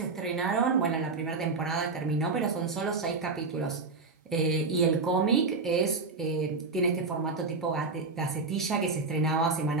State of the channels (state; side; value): quieter; left; 4.1 dB